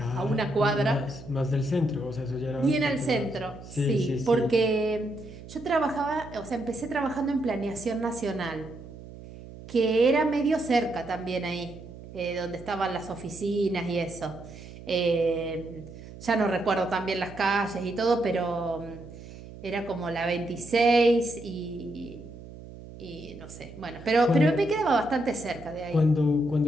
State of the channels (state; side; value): noise; right; hum, 15 dB below the sound